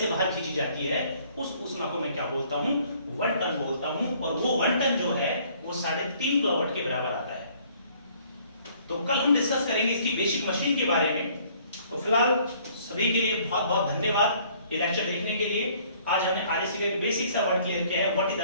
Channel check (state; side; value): inverted; both; correlation -0.59